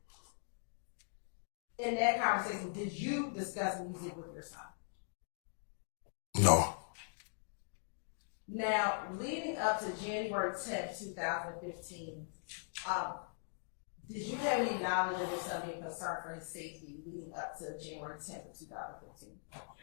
In that conversation, did you discuss music with your son? No. Now, leading up to January 10th, 2015, did you have any knowledge of your son being concerned for his safety leading up to January 10th of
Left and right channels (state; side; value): silent; right; digital silence